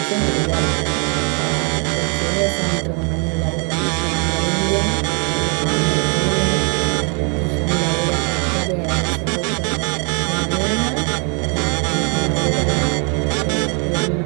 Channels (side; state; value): left; quieter; 37.2 dB